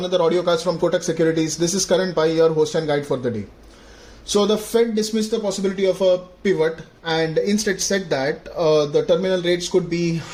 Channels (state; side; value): identical; both; correlation 1.00